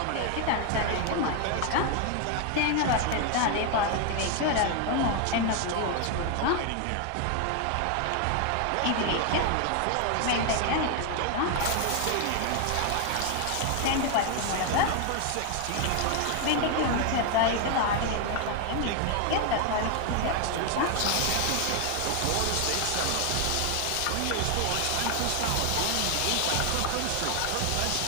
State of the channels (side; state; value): both; different; correlation 0.01